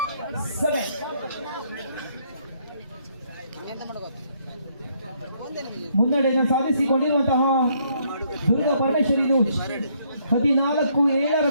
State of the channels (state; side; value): inverted; both; correlation -0.69